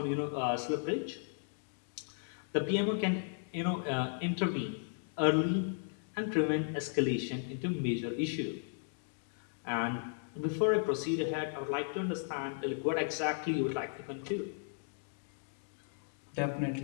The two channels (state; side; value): silent; right; digital silence